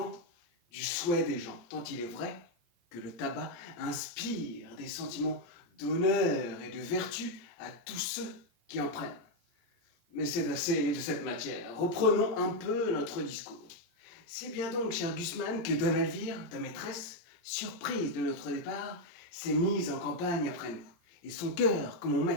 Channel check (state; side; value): late; right; 17 ms